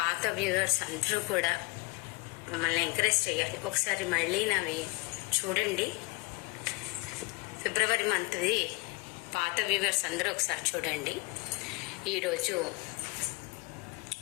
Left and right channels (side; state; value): right; quieter; 25.9 dB